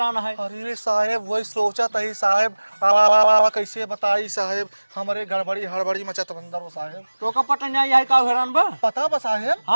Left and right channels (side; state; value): both; inverted; correlation -1.00